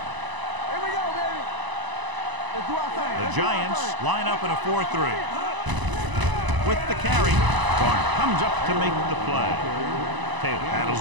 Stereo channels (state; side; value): late; left; 1.0 ms